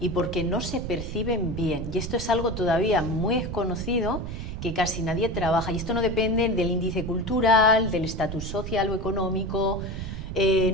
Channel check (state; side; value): noise; right; rumble, 7 dB below the sound